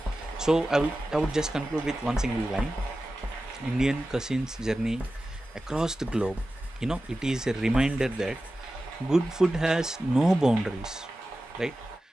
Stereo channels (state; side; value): normal; both; correlation 0.94